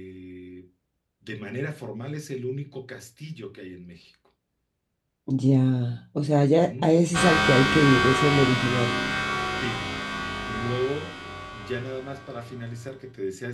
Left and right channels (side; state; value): both; identical; correlation 1.00